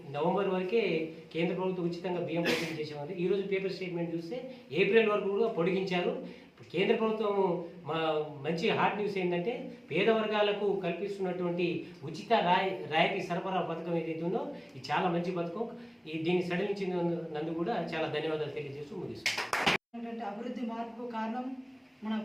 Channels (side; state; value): both; identical; correlation 1.00